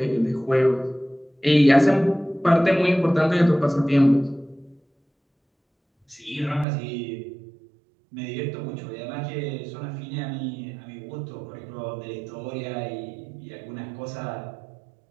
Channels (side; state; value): left; drops out; at 6.7 s